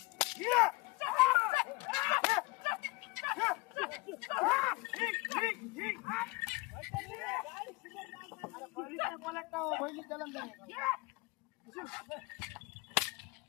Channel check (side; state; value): right; quieter; 24.4 dB